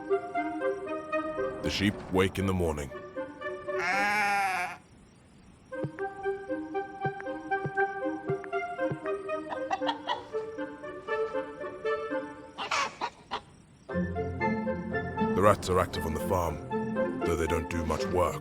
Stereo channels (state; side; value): identical; both; correlation 1.00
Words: The sheep wake in the morning. The rats are active on the farm, though they don't do much work,